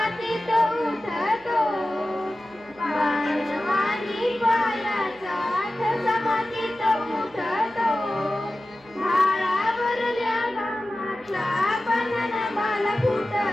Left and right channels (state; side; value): noise; right; hum, 29 dB below the sound